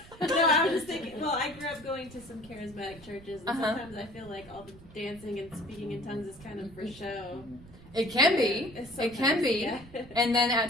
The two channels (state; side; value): noise; right; rumble, 20 dB below the sound